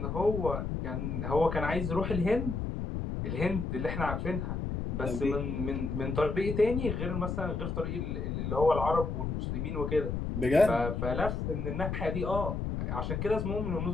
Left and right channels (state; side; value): noise; left; rumble, 2 dB below the sound